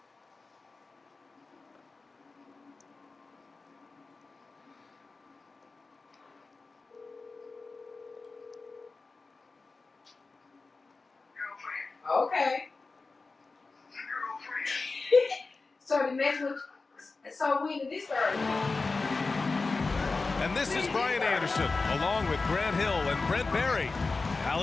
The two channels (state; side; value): quieter; right; 3.9 dB